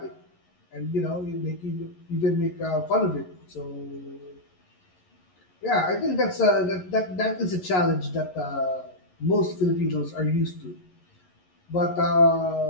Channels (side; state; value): right; late; 11 ms